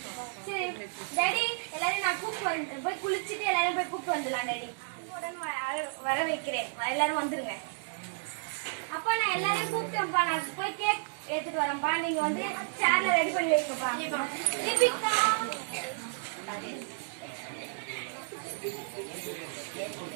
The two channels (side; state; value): left; silent; digital silence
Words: you, ma. சரி daddy எல்லாரும் நான் கூப்பிட்டு வரேன். போய் குளிச்சிட்டு எல்லாரும் போய் கூப்பிட்டு வந்துடலாம் டாடி. வர வைக்கிறேன். எல்லாரும் வந்துருங்க. அப்பா நான் எல்லாரையும் கூப்பிட்டேன்ப்பா. நான் போய் கேக் எடுத்துட்டு வரேன்ப்பா. நீங்க வந்து சேர்ல ரெடி பண்ணி வைங்கப்பா. தீபிகா